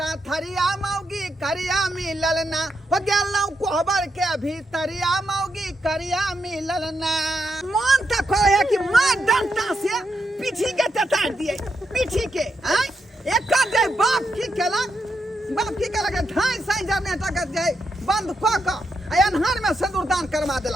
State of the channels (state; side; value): normal; both; correlation 0.82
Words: थरिया मौगी करिया मिलल ना हो गेलौ कोहबर के भीतरिया मौगी करिया मिलल ना मन तक है कि मां डंटा से पीछी के ततार दिए पीछी के हैं एक दे बाप की केलक ढाई साई जनरेटर के जाए बंद क क अनहार में सिंदूरदान करवा